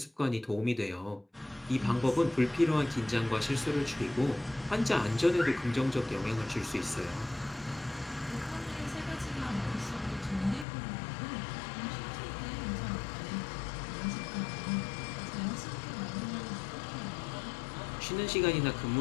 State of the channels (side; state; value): right; drops out; at 10.7 s